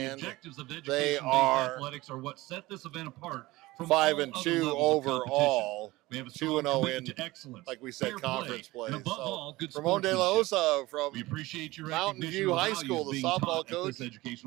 the objectives of they are athletics are what set this event apart from 5-2 overall, 2-0 in, like we said, conference play. So Ramon De La Osa from Mountain View High School, the softball coach,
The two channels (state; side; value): quieter; left; 19.6 dB